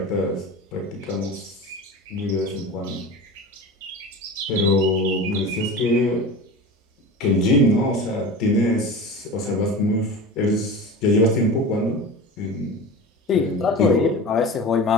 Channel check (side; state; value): both; normal; correlation 0.32